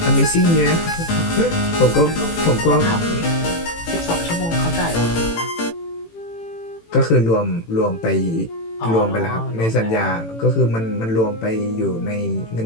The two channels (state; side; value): late; right; 18 ms